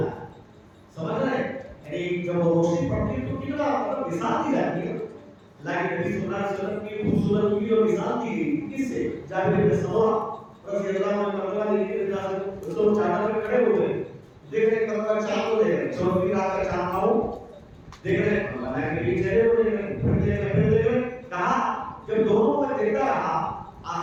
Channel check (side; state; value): both; identical; correlation 1.00